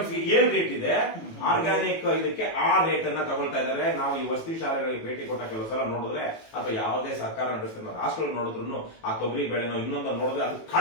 ಏನ್ ರೇಟ್ ಇದೆ, ಆರ್ಗ್ಯಾನಿಕ್ ಇದಕ್ಕೆ ಆ ರೇಟ್ ಅನ್ನ ತಗೊಳ್ತಾ ಇದ್ದಾರೆ. ನಾವು ಈ ವಸತಿ ಶಾಲೆಗಳಿಗೆ ಭೇಟಿ ಕೊಟ್ಟ ಕೆಲವು ಸಲ ನೋಡಿದ್ರೆ ಅಥವಾ ಯಾವುದೇ ಸರ್ಕಾರ ನಡೆಸ್ತಿರೋ ಹಾಸ್ಟೆಲ್ ನೋಡಿದ್ರು ಆ ತೊಗರಿ ಬೆಳೆನೋ ಇನ್ನೊಂದು ನೋಡಿದ್ರೆ ಅದು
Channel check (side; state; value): right; late; 18 ms